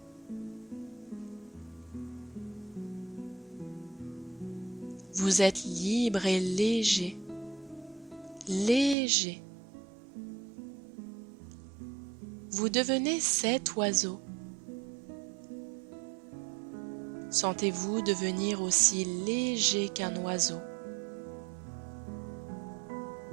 Vous êtes libre et léger, léger. Vous devenez cet oiseau. Sentez-vous devenir aussi léger qu'un oiseau.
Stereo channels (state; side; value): drops out; left; at 9.0 s